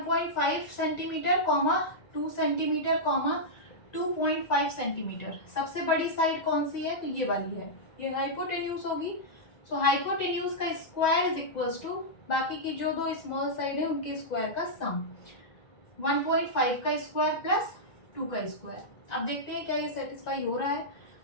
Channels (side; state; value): right; late; 1.9 ms